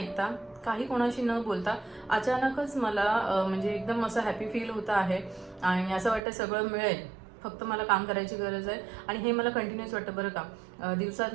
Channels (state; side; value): drops out; left; at 6.2 s